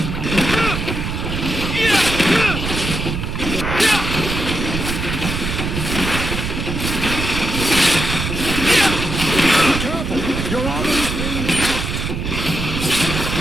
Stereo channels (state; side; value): noise; right; rumble, 3 dB below the sound